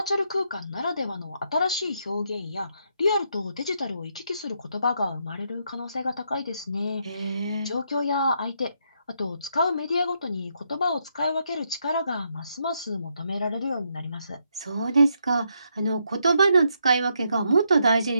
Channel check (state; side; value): inverted; both; correlation -0.77